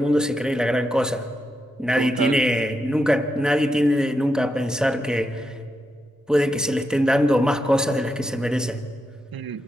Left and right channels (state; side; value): normal; both; correlation 0.85